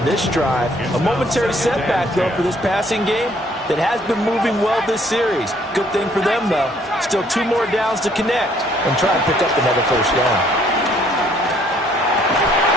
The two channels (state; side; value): normal; both; correlation 0.63